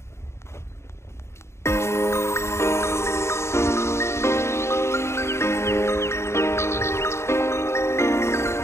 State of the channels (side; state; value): right; late; 0.13 ms